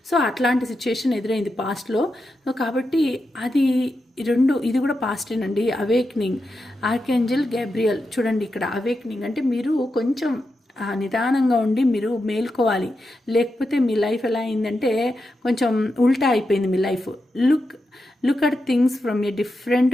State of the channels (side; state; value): both; normal; correlation 0.88